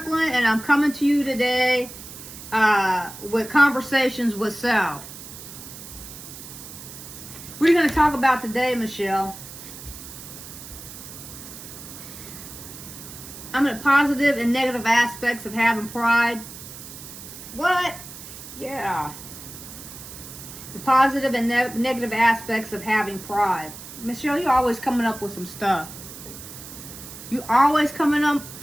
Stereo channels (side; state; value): right; noise; hiss, 14 dB below the sound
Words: and I'm coming to you today with Conversations with Self. What are you going to talk about today, Michelle? I'm at positive and negative aspects of having pride. What? Yeah. The positive and negative aspects of having pride. Michelle, you're always coming up with some stuff. You always coming up